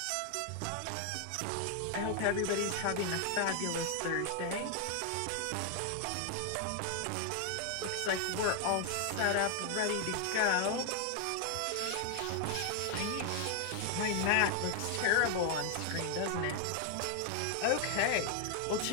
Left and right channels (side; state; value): both; different; correlation 0.00